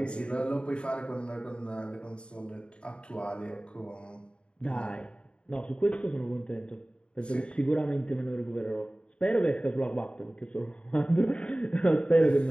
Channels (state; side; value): late; right; 0.054 ms